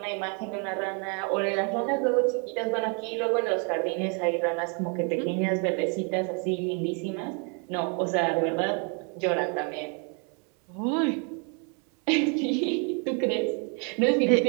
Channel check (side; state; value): left; quieter; 37.1 dB